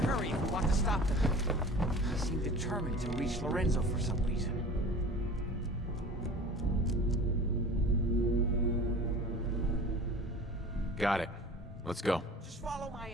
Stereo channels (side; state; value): both; normal; correlation 0.40